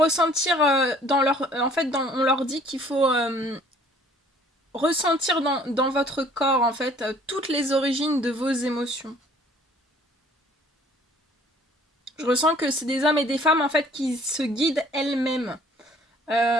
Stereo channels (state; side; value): normal; both; correlation 0.56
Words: dans leur... En fait, on leur dit qu'il faut ressentir dans votre corps, en fait, toutes les origines de vos émotions. Je ressens que c'est des hommes et des femmes, en fait, qui se guident elles-mêmes.